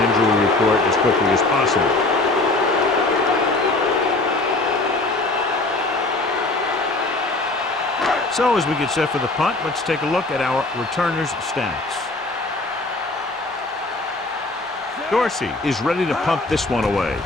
injury report as quickly as possible. So as we get set for the punt, let's take a look at our returners' stats. Dorsey is ready to punt this one away.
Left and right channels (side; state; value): right; quieter; 3.0 dB